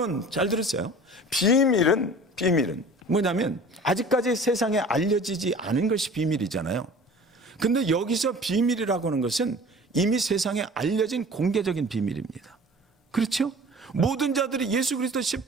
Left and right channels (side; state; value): both; normal; correlation 0.44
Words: 잘 들으세요. 비밀은 뭐냐면 아직까지 세상에 알려지지 않은 것이 비밀이잖아요. 근데 여기서 비밀이라고 하는 것은 이미 세상에 알려진 공개적인 비밀입니다. 그렇죠? 모든 자들이 예수 그리스도